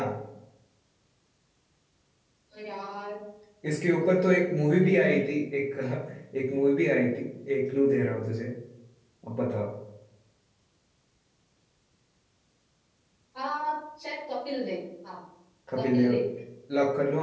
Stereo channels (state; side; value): identical; both; correlation 1.00